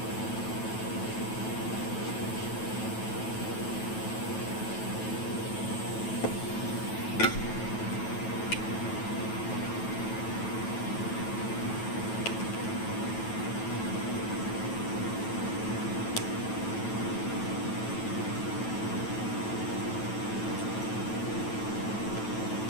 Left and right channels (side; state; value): right; late; 9.2 ms